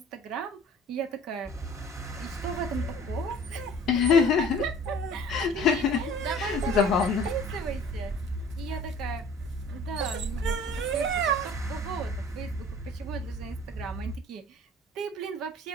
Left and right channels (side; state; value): both; normal; correlation 0.49